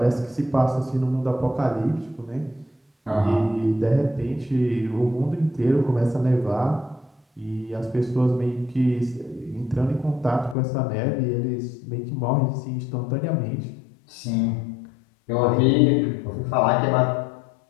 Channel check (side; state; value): right; drops out; at 10.6 s